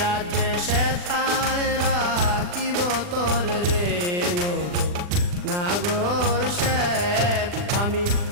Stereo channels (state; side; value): late; left; 40 ms